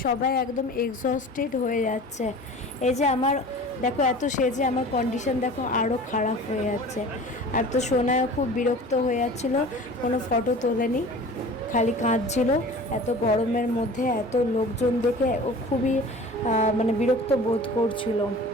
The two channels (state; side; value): normal; both; correlation 0.41